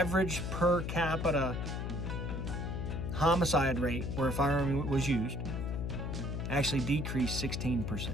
per capita homicide rate where a firearm was used actually decreased 16%.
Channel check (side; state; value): left; noise; hum, 3 dB below the sound